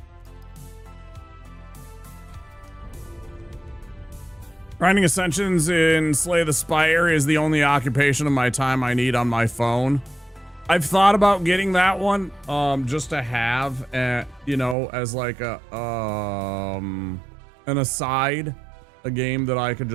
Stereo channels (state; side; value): drops out; left; at 14.8 s